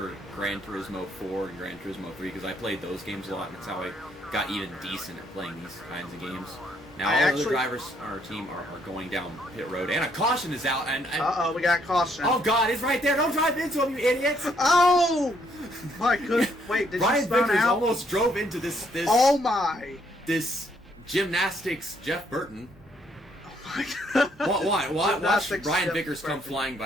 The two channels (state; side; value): normal; both; correlation 0.70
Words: Gran Turismo 4 and Gran Turismo 3 because I played those games a lot, and that's how I got even decent at playing these kinds of games. Now all the drivers on our team are going down pit road, and a caution is out. And we got caution. Oh God, it's right there! Don't drive into him, you idiots! Oh my goodness! Wait, did Brian you spawn Vickers out? almost drove into this. Oh my! This Gymnastics Jeff Burton. Oh my God! Watch Brian Vickers come flying